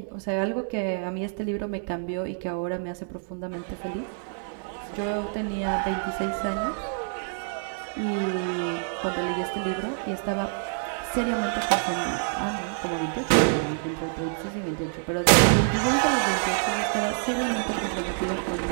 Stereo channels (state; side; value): silent; left; 60 dB below the other